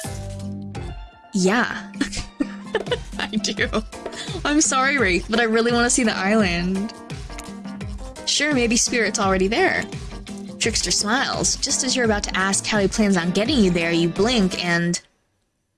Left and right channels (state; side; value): identical; both; correlation 1.00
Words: Yeah. I do. I'm sorry, Wraith, but I really want to see the island. Sure, maybe Spirit's already there. Trickster smiles. Just as you're about to ask how he plans on getting you there, you blink and...